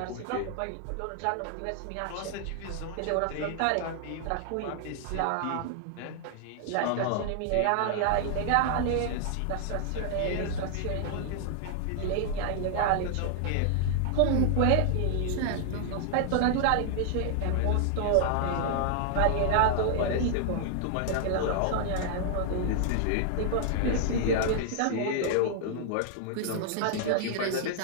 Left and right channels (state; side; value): different; both; correlation -0.01